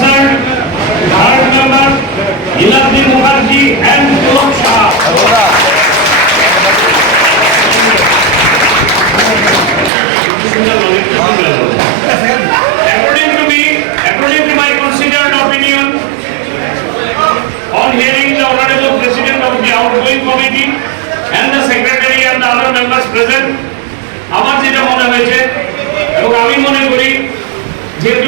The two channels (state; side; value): drops out; left; at 9.9 s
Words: third member Ilabdi Mukherjee and Pulak Shah. According to my considered opinion, on hearing the Honorable President of the outgoing committee and the Secretary and the other members present, আমার যেটা মনে হয়েছে এবং আমি মনে করি যেহেতু